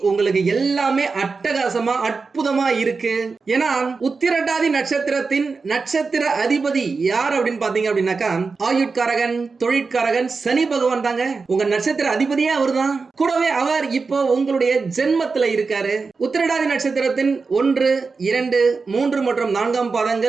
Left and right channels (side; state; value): left; quieter; 4.5 dB